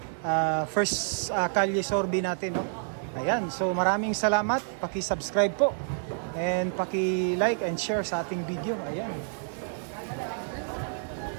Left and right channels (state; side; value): silent; left; digital silence